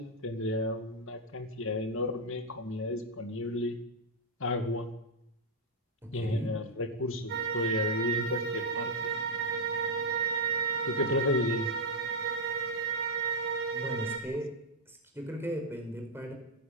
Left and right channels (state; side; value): normal; both; correlation -0.02